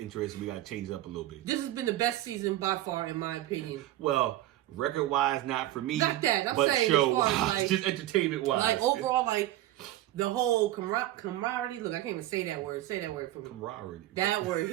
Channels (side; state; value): left; quieter; 14.8 dB